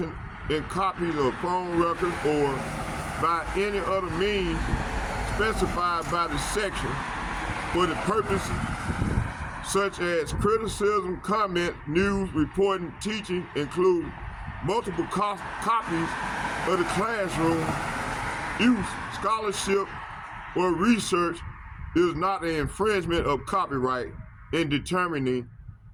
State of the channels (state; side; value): identical; both; correlation 1.00